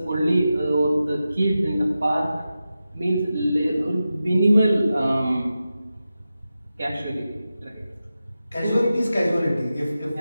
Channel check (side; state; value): both; inverted; correlation -0.92